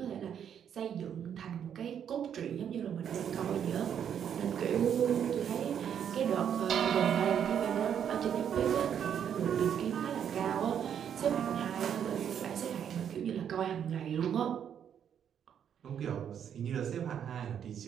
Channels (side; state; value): left; quieter; 8.7 dB